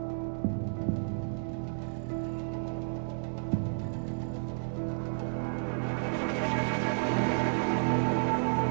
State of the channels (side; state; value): left; silent; digital silence